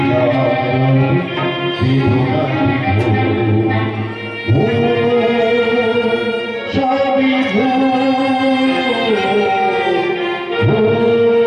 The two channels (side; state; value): both; identical; correlation 1.00